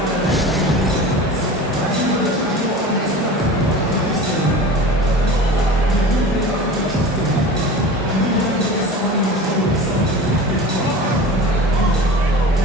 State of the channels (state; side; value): normal; both; correlation 0.35